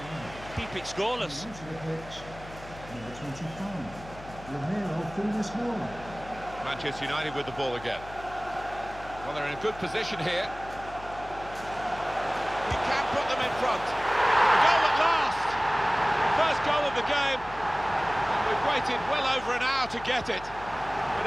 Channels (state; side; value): noise; left; hum, 16 dB below the sound